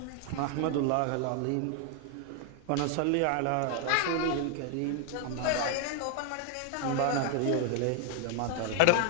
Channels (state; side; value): different; both; correlation 0.00